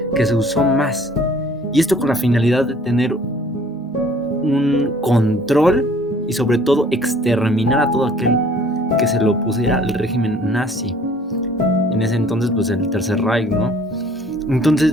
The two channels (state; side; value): normal; both; correlation 0.54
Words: que se usó más. Y esto con la finalidad de tener un control y sobre todo exterminar a todo aquel que se le opusiera al régimen nazi. En ese entonces, pues el Tercer Reich, ¿no?